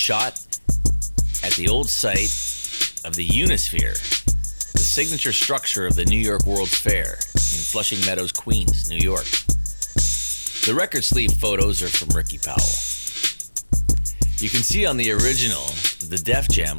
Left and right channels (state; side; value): inverted; both; correlation -1.00